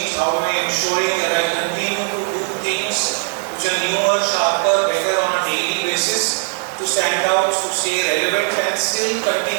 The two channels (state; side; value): silent; left; 67 dB below the other